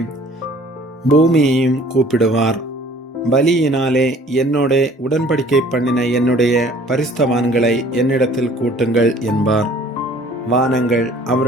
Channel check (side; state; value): both; normal; correlation 0.53